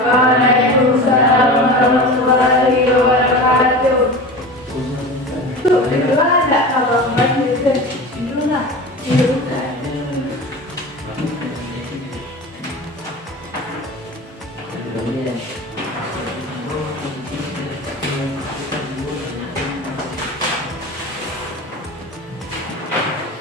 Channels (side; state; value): both; normal; correlation 0.31